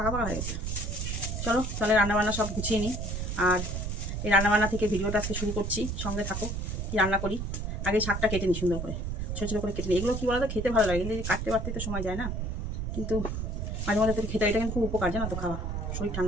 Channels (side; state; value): right; noise; rumble, 3 dB below the sound